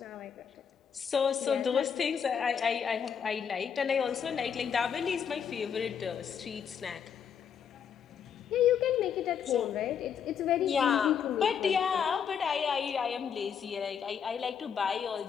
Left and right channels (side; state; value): right; quieter; 7.5 dB